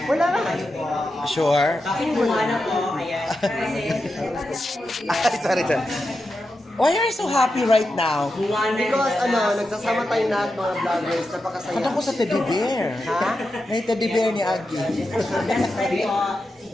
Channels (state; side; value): normal; both; correlation 0.89